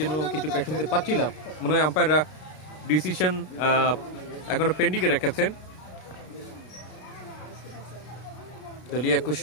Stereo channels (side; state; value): right; late; 33 ms